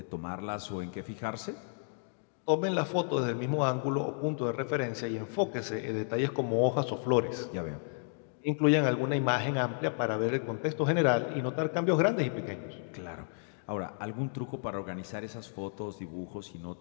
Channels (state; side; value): silent; right; digital silence